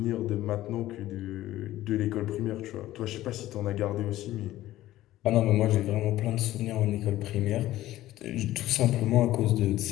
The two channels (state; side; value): quieter; right; 15.1 dB